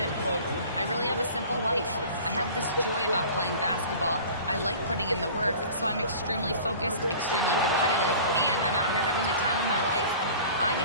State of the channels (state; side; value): inverted; both; correlation -0.42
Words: quote, "I really have a simple life. I have this joy about playing basketball. I like putting in the work, so I'm extremely focused, extremely competitive, and I'm out here having the time of my life. I